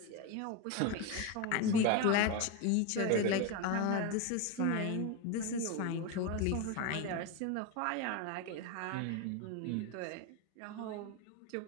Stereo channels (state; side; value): different; both; correlation 0.03